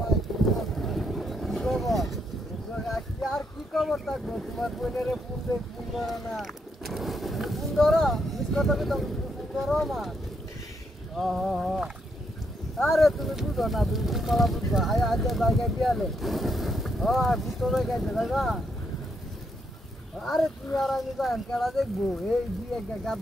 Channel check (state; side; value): normal; both; correlation 0.77